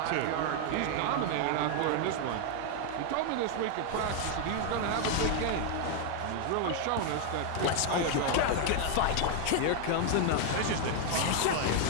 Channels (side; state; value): both; different; correlation 0.00